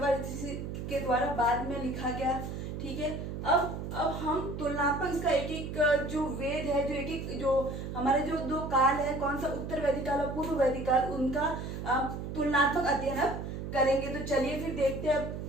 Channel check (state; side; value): noise; right; hum, 6 dB below the sound